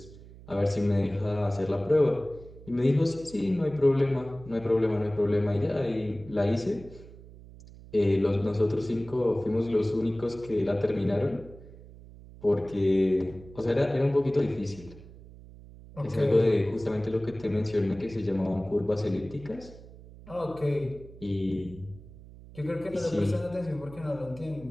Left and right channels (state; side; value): noise; right; hum, 19 dB below the sound